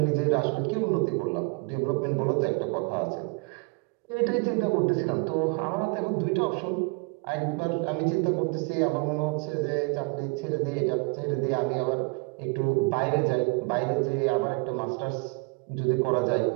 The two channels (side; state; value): left; quieter; 30.1 dB